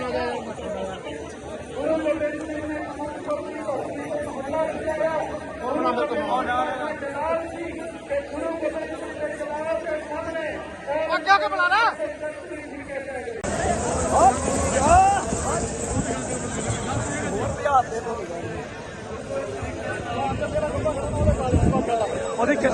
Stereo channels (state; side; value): identical; both; correlation 1.00